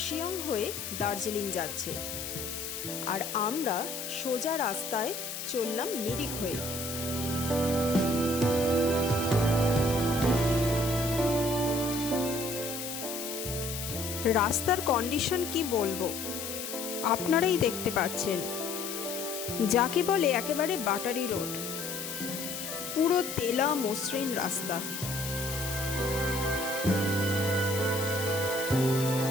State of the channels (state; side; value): noise; left; hiss, 6 dB below the sound